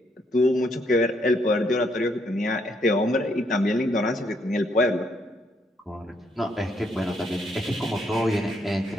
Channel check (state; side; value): normal; both; correlation 0.73